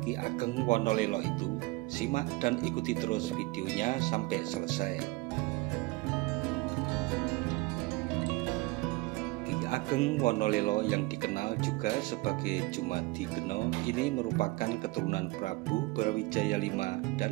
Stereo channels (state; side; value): quieter; left; 22.5 dB